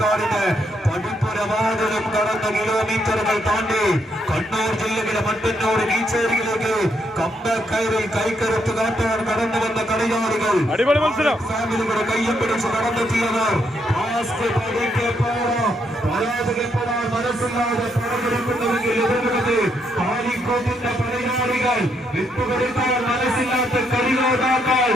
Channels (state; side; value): normal; both; correlation 0.76